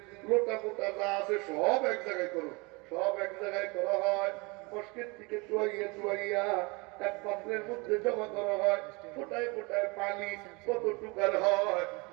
লোটা মোটা যা আছে সব এক জায়গায় করো। সব এক জায়গায় করা হয়, মস্কের থেকে চুয়াইয়া এক পাত্রের মধ্যে জমা করা হয়, ফোটায় ফোটায় পানি কতটুকার হয়।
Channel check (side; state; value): left; quieter; 27.6 dB